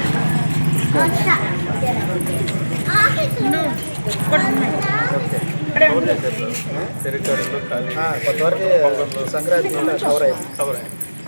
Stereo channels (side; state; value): both; inverted; correlation -1.00